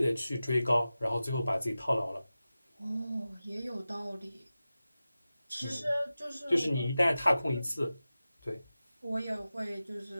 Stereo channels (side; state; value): both; inverted; correlation -0.95